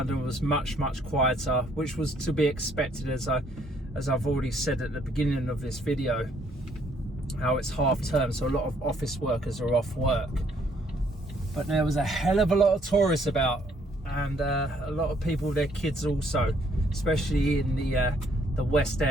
was much quieter, which was to be expected, as I've already said at the beginning of this video, how it's half term, so a lot of office workers are off work. But there was a hell of a lot of tourists about, and a lot of people with their kids also, especially in the West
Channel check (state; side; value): normal; both; correlation 0.66